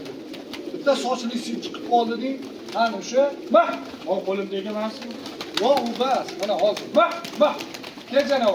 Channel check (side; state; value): both; identical; correlation 1.00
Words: Bitta sochli sim chiqib qolding. Ana o'sha, o qo'limdagi emasmi? Yo'q, u bas. Mana hozir. Kel